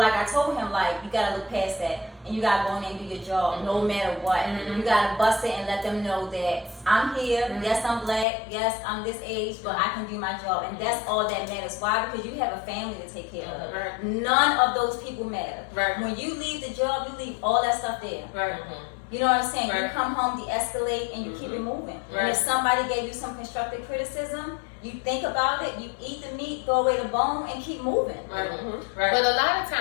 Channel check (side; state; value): right; drops out; at 8.2 s